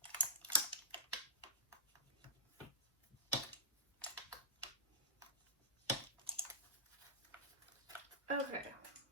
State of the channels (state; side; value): normal; both; correlation -0.17